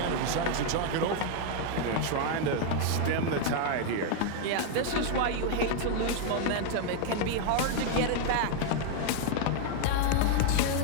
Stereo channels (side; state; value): both; different; correlation 0.00